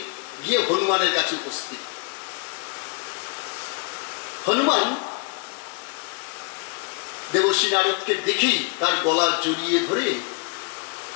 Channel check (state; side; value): quieter; right; 32.0 dB